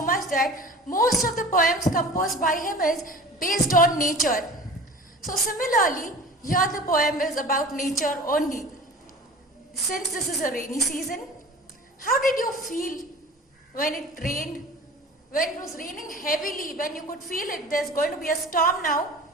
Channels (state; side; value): normal; both; correlation 0.40